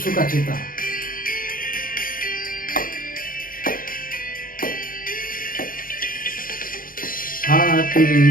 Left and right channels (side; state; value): right; late; 0.41 ms